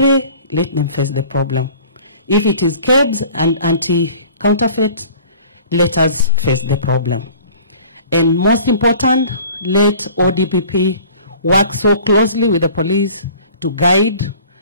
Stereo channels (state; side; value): inverted; both; correlation -0.47